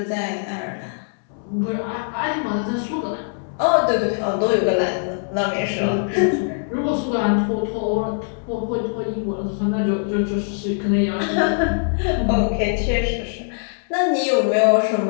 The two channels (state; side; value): silent; right; digital silence